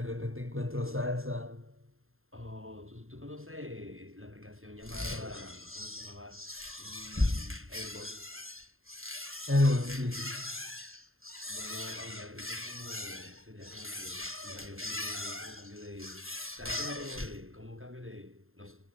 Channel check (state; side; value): late; left; 0.61 ms